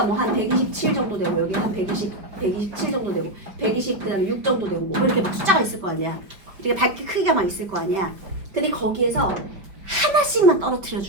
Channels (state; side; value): late; left; 5.1 ms